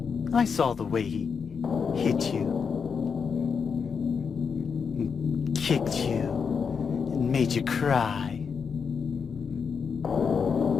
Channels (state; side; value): quieter; right; 6.1 dB